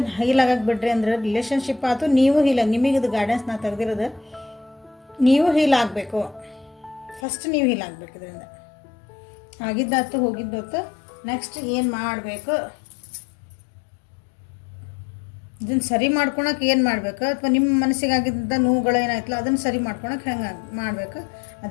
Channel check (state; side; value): drops out; right; at 7.2 s